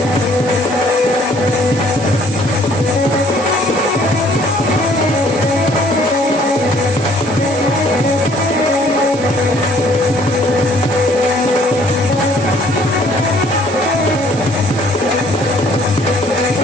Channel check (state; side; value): noise; right; hiss, 15 dB below the sound